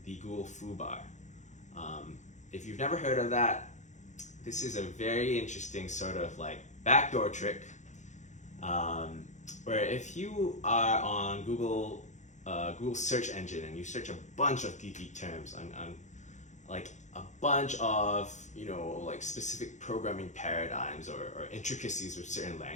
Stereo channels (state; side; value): late; right; 0.35 ms